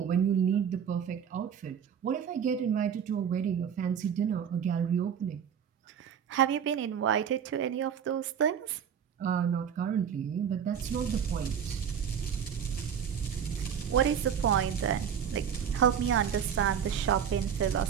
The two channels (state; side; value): quieter; left; 8.1 dB